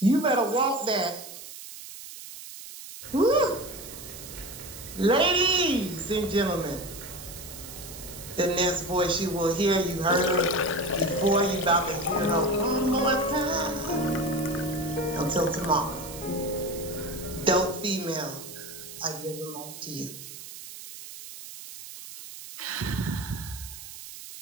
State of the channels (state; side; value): noise; right; hiss, 13 dB below the sound